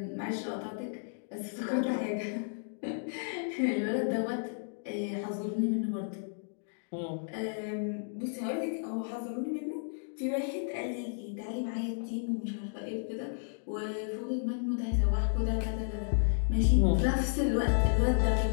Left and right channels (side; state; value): right; silent; digital silence